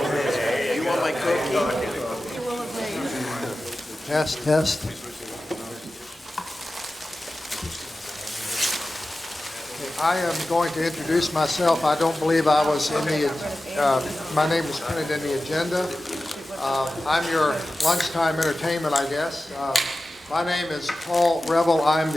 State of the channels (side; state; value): both; normal; correlation 0.95